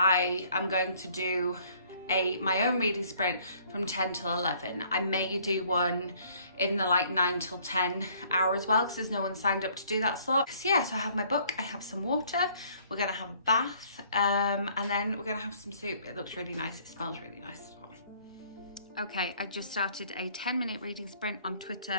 am going to do my own reading sprint from 10 till 11. I may do one in the like 9 till 10 hour as well, because there's no one signed up to do that slot. So yeah, so I have my book, I have some water, we're gonna have a bath, and then we're gonna have some soup. It looks really nice, it smells really nice as well. Okay, I just started a 10-minute reading sprint on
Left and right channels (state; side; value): inverted; both; correlation -0.60